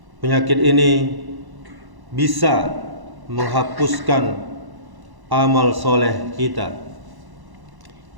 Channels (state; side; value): late; left; 1.1 ms